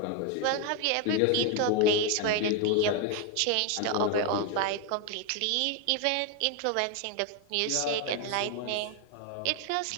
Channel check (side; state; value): both; different; correlation 0.01